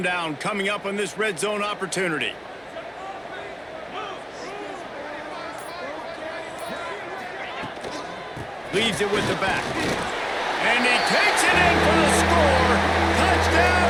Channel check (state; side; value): identical; both; correlation 1.00